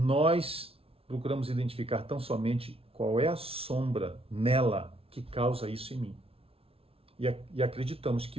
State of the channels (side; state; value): left; late; 0.27 ms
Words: procuramos identificar tão somente qual é a sombra nela que causa isso em mim. E acreditamos